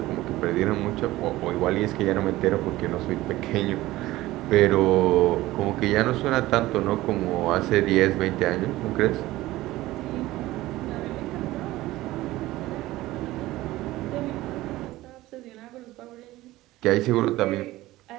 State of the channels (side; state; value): left; quieter; 17.3 dB